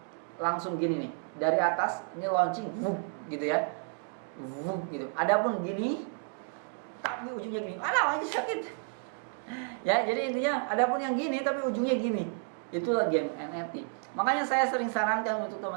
langsung gini nih, dari atas ini launching gitu ya, gitu. Adapun gini, tapi ujungnya gini, alah aja sakit. Ya, jadi intinya adapun yang gini tapi ujungnya gini. Itulah game NFT. Makanya saya sering sarankan untuk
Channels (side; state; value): left; silent; 57 dB below the other